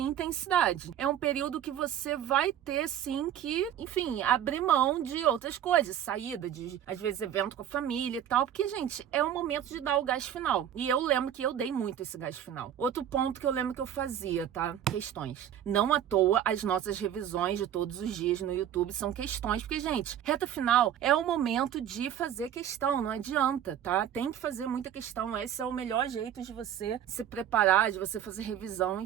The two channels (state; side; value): quieter; left; 10.2 dB